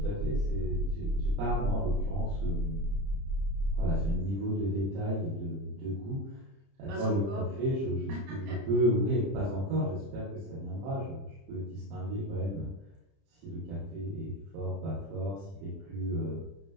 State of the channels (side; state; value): left; late; 30 ms